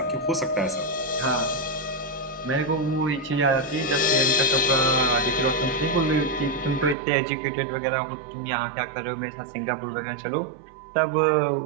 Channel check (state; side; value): drops out; left; at 7.0 s